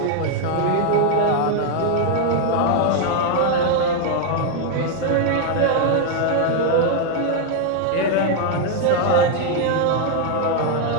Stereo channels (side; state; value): both; different; correlation 0.01